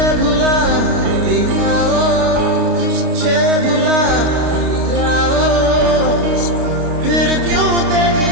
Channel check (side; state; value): left; late; 29 ms